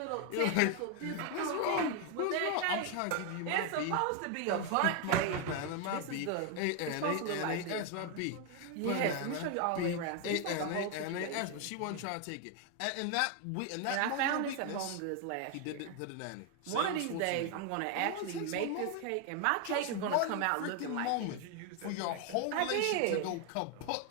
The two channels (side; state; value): both; different; correlation 0.01